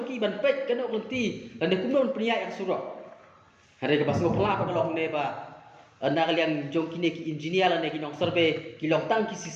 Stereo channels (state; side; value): identical; both; correlation 1.00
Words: ban pet kena ulti dan kumnon pria yang surok hari ke basgo pela kalau ne ba anda kalian joki ne ki engineer la ne ki nong survey ki long tang ki